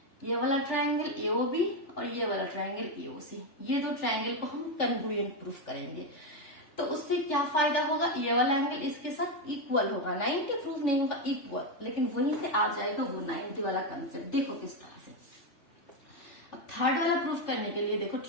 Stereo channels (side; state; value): right; late; 3.3 ms